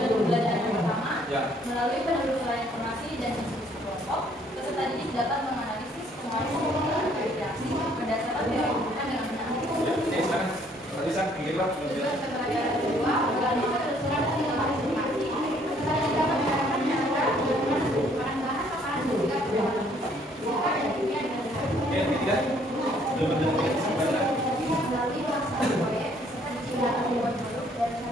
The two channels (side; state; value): both; normal; correlation 0.63